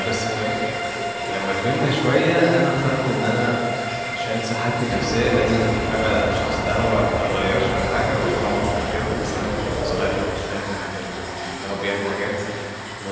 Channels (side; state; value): both; identical; correlation 1.00